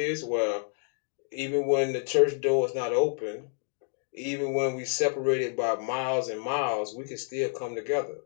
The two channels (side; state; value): right; silent; digital silence